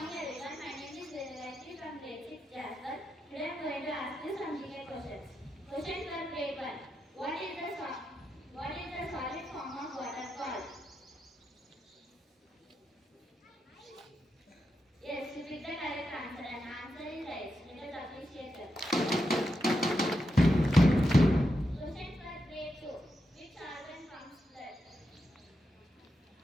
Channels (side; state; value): both; normal; correlation 0.86